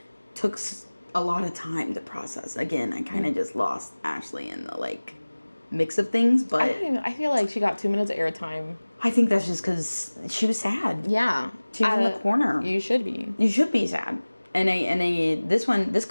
took a lot of time to process. Again, I kind of just lost Ashley in the like mix of things, but I feel like she got 2 minutes of airtime. I think that's just because she was sad. Yeah. She was in the corner. You should be. You should be sad. And this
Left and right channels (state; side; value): inverted; both; correlation -1.00